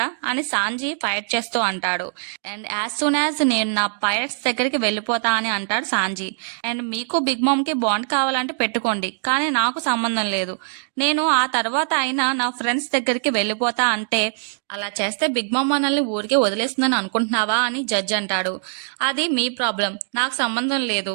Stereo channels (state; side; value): silent; left; 64 dB below the other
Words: అని సాంజీ ఫైట్ చేస్తూ అంటాడు. అండ్ యాజ్ సూన్ యాజ్ నేను నా పైరట్స్ దగ్గరికి వెళ్ళిపోతా అని అంటాడు సాంజీ. అండ్ మీకు బిగ్ మామ్ కి బాండ్ కావాలంటే పెట్టుకోండి, కానీ నాకు సంబంధం లేదు. నేను ఆ తర్వాత అయినా నా ఫ్రెండ్స్ దగ్గరికి వెళ్ళిపోతా అంటే అలా చేస్తే బిగ్ మామ్ మనల్ని ఊరికే వదిలేస్తుందని అనుకుంటున్నావా అని జడ్జ్ అంటాడు. అది మీ ప్రాబ్లం, నాకు సంబంధం